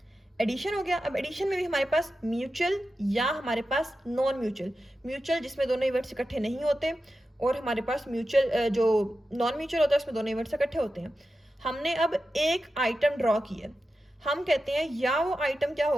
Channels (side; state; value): both; normal; correlation 0.92